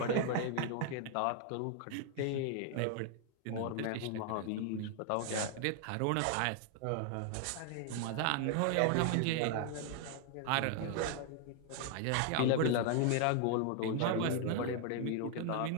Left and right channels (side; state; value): both; different; correlation 0.00